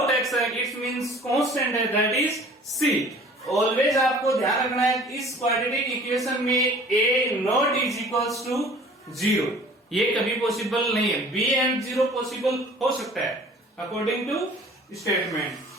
x है इट मींस कांस्टेंट है, दैट इज c. ऑलवेज आपको ध्यान रखना है इस क्वाड्रेटिक इक्वेशन में a not is equals to 0. ये कभी पॉसिबल नहीं है. b एंड 0 पॉसिबल हो सकता है अकॉर्डिंग टू स्टेटमेंट.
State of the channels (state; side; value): normal; both; correlation 0.48